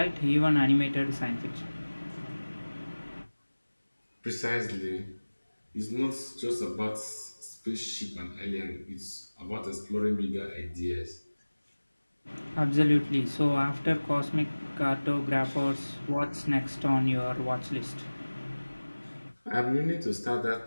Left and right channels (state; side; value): inverted; both; correlation -1.00